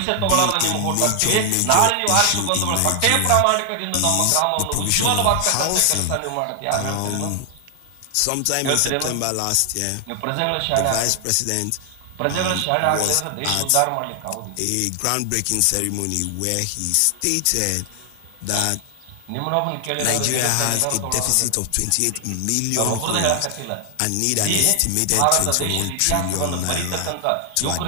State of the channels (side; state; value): both; different; correlation 0.00